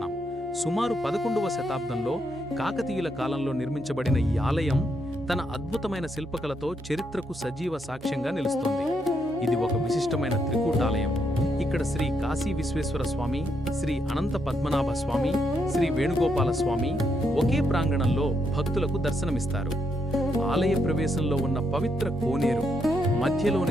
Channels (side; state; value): both; normal; correlation 0.78